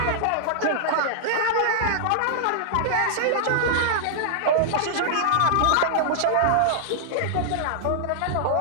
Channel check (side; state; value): both; different; correlation -0.01